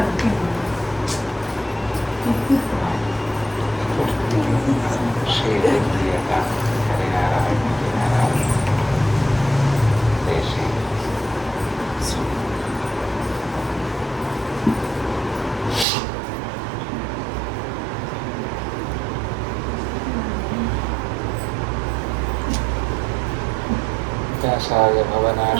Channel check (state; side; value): drops out; left; at 15.9 s